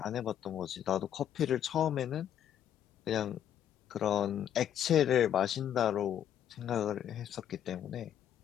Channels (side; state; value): right; quieter; 10.1 dB